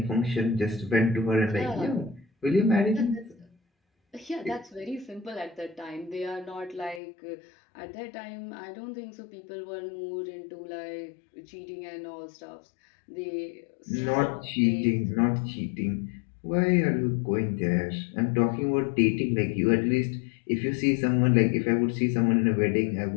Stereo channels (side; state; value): right; drops out; at 7.0 s